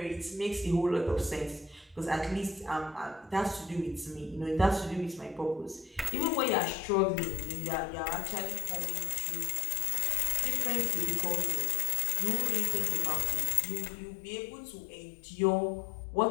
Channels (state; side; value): drops out; right; at 6.1 s